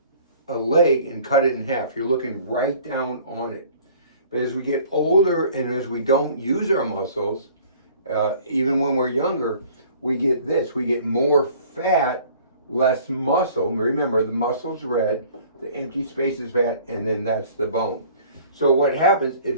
a leg and cut it in half. You're looking right down on it. But as we get older and as we don't use our muscles, even when we're younger, we get this. We get more fat, less muscle. Remember, the muscle's red, the empty space is fat, and then that's the bone. So what happens is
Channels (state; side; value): inverted; both; correlation -0.51